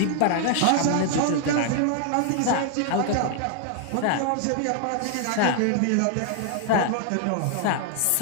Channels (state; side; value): different; both; correlation 0.00